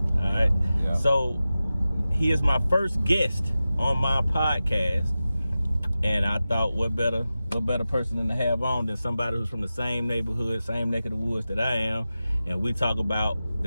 All right. Yeah. So he is my first guest on my podcast, and I thought, what better person than to have on than somebody who's from the same neighborhood, same neck of the woods that I am, and we talk about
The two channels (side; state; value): both; inverted; correlation -0.94